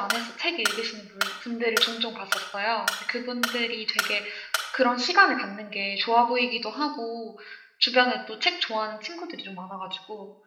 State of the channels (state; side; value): identical; both; correlation 1.00